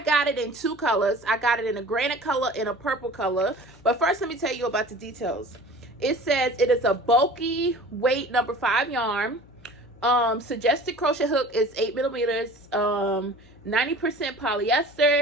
it in two colors. I got it in a granite color and a purple color. But first, let me tell you about the details. It says it is a bulky weight number 5 yarn. Suggested crochet hook is 8 millimeters. 90%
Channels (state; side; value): noise; left; hum, 25 dB below the sound